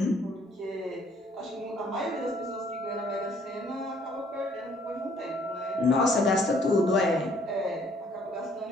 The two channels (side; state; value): both; normal; correlation 0.62